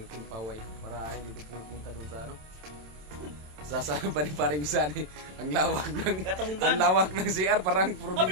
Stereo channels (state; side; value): late; left; 27 ms